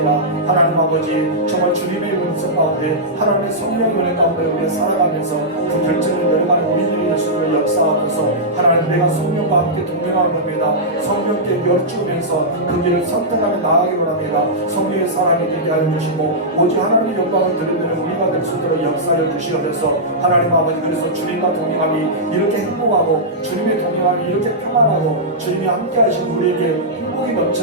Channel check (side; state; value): both; normal; correlation -0.12